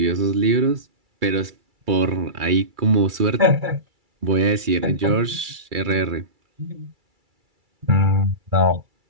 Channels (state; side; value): late; left; 2.3 ms